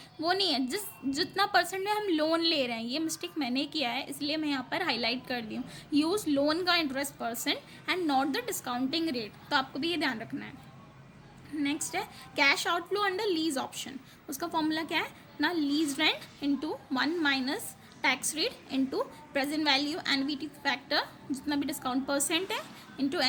वो नहीं है, जितना परसेंट में हम लोन ले रहे हैं, ये मिस्टेक मैंने किया है इसलिए मैं यहाँ पर हाईलाइट कर दी हूँ। यूज़ लोन का interest percent and not the discounting rate, तो आपको भी ये ध्यान रखना है। नेक्स्ट है cash outflow under lease option, उसका फॉर्मूला क्या है ना, lease rent into 1 minus tax rate into present value annuity factor जितना भी डिस्काउंट परसेंट है into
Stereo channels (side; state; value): both; identical; correlation 1.00